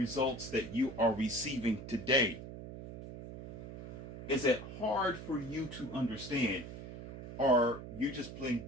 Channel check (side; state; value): right; noise; hum, 11 dB below the sound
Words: that you are receiving today. Is it hard for you to understand or you just plain